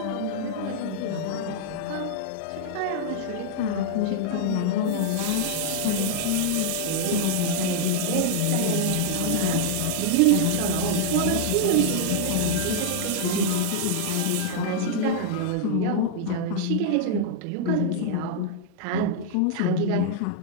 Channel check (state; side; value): different; both; correlation -0.01